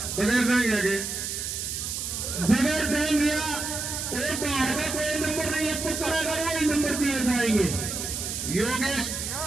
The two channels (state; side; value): noise; right; hiss, 4 dB below the sound